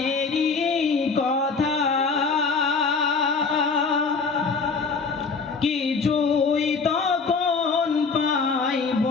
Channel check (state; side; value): quieter; right; 4.7 dB